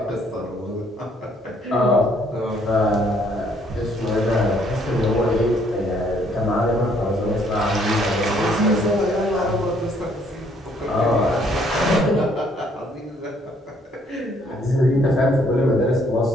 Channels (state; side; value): normal; both; correlation 0.66